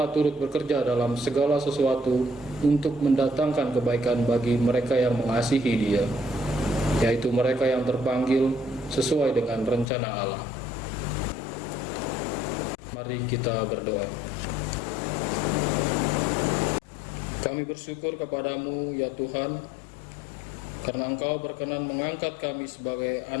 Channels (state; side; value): drops out; right; at 9.9 s